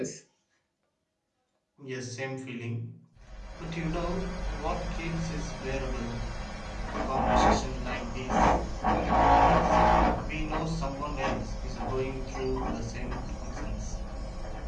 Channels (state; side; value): identical; both; correlation 1.00